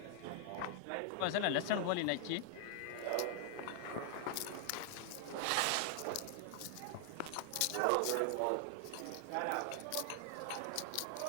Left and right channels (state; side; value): different; both; correlation 0.00